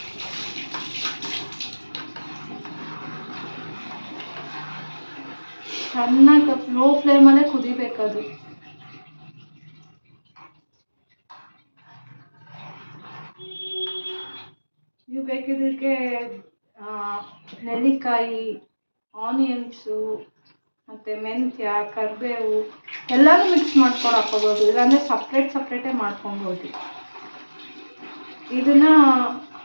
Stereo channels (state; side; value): inverted; both; correlation -1.00